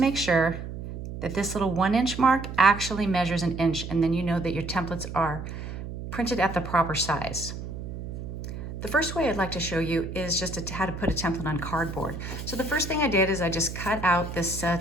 sure that this little 1-inch mark actually measures an inch, and then you know that your templates are printed at the proper size. The first way I'd like to show you is just how to put a template on cardboard. So the first thing I did is I just cut out this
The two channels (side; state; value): right; noise; hum, 8 dB below the sound